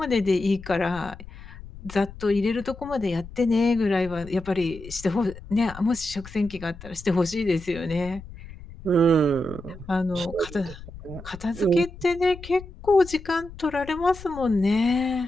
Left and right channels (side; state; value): left; noise; rumble, 15 dB below the sound